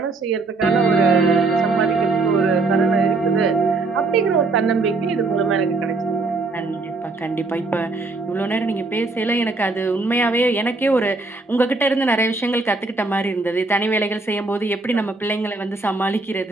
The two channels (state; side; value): quieter; left; 3.5 dB